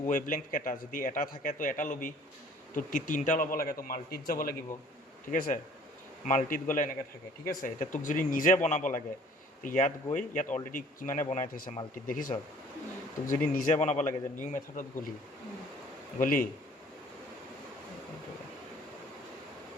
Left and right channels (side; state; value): both; normal; correlation 0.53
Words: ৱেভলেংথ কেইটা যদি এটা থাকে তো এটা ল'বি তো তিনিটা ল'ব লাগে তো মাল্টিত যাব লাগিব ঠিক আছে মাল্টিত গ'লে এনেকৈ থাকে ঠিক আছে এতিয়া তোক যদি নিজে বনাব লাগে তো ইয়াত গৈ ইয়াত অলৰেডি কিমানে বনাই থৈছে মাল্টিত দেখিছ তোক যদি নিজে বনাব লাগে যে নিউ মেথডত গলি